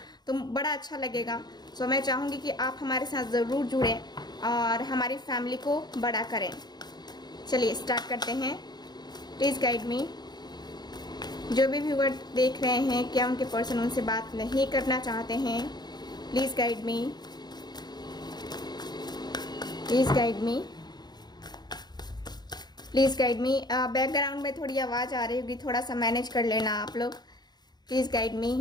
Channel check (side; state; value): right; late; 0.20 ms